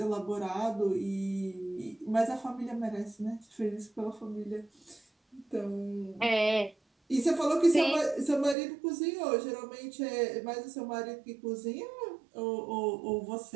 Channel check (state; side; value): drops out; left; at 8.6 s